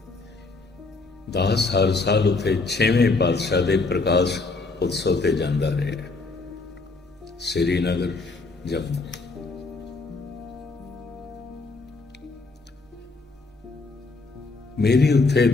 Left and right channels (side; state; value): right; quieter; 3.7 dB